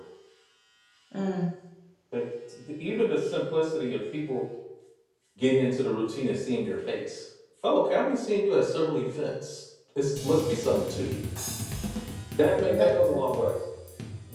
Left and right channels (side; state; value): both; identical; correlation 1.00